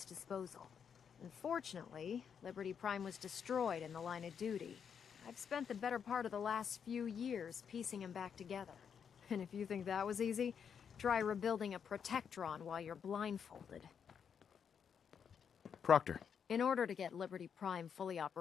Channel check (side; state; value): right; quieter; 7.3 dB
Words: disposal. Unfortunately, Liberty Prime was destroyed in the line of duty. I've spent the better part of the last few years piecing him back together. And if you think that was easy, try rebuilding a Protectron while you're blindfolded. Proctor. In order to get Liberty Prime fully